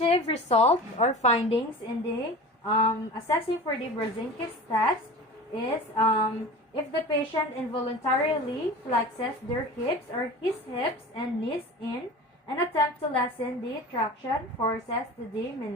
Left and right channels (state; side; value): normal; both; correlation 0.35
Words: result or findings in the assessing for the Brzezinski's test is if the patient involuntarily flexes their hips or his hips and knees in and attempt to lessen the traction forces to the